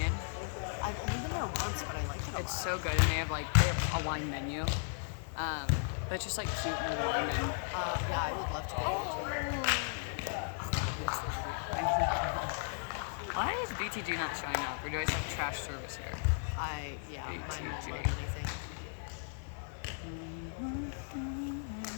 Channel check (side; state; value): right; silent; digital silence